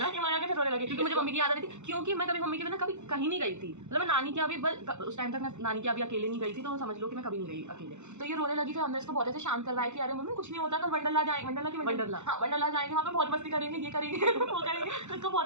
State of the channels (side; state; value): left; late; 0.83 ms